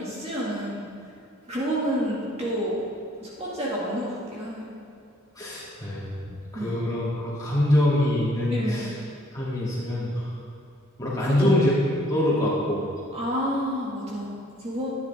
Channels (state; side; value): normal; both; correlation 0.63